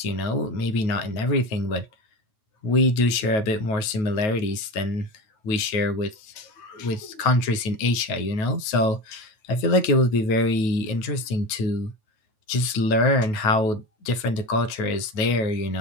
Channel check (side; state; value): right; late; 9.3 ms